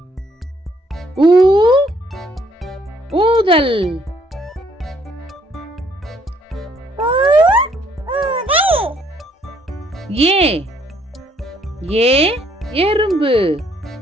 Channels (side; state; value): both; normal; correlation 0.66